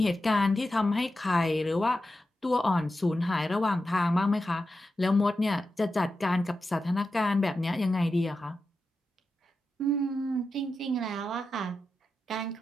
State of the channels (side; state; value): both; normal; correlation 0.90